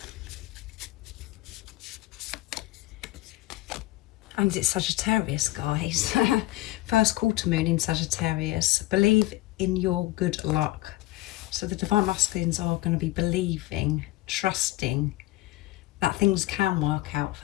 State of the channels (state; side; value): quieter; right; 18.1 dB